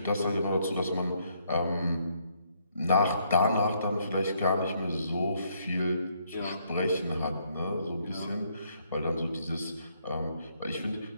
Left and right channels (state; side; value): inverted; both; correlation -0.71